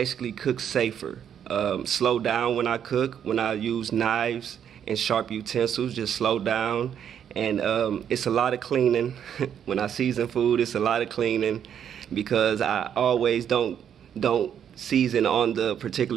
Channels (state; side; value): quieter; left; 8.8 dB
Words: cook safer, slow down when I cook. When I use knives and sharp utensils, just slow down. And it's a lot of cleaning. When I season food, it's a lot of cleaning because I always don't season on the